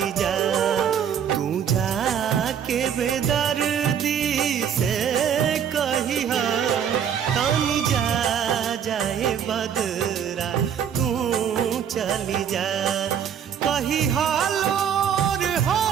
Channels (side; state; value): left; quieter; 8.4 dB